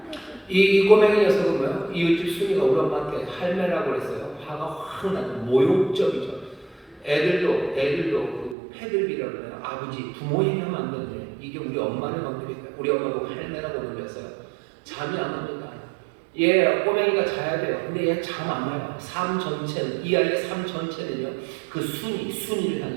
이 꼬맹이 녀석은 뭐야? 이웃집 순이가 우리 엄마한테 할매라고 그랬어요. 화가 확 나죠. 모욕적이죠. 애들도 그 패들비라고 해요. 아버지, 부모 얘기하면 안 되는데 이게 우리 엄마를 건드릴까요? 우리 엄마 보고 할매라고 놀렸어요. 잠이 안 옵니다. 얘 꼬맹이가 자야 돼요. 근데 얘 잠 안 와요. 삶 전체는, 이 아이의 삶 전체는요, 그 순위를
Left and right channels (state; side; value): drops out; left; at 8.6 s